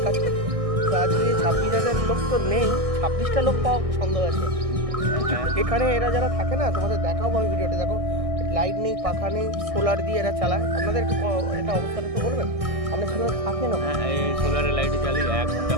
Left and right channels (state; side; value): late; left; 1.6 ms